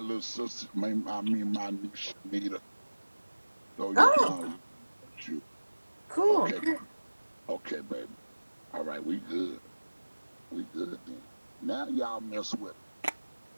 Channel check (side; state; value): both; inverted; correlation -1.00